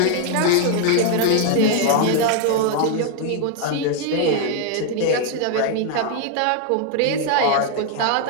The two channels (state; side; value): different; both; correlation 0.00